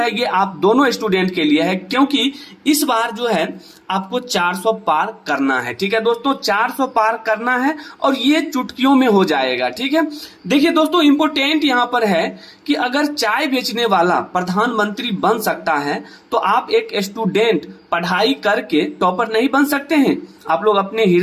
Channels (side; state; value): both; identical; correlation 1.00